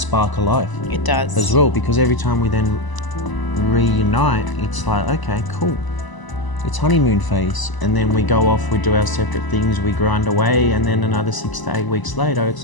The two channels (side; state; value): right; late; 1.0 ms